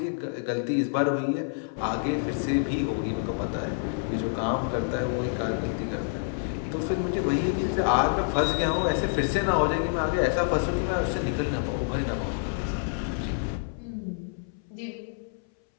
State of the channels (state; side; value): silent; right; 60 dB below the other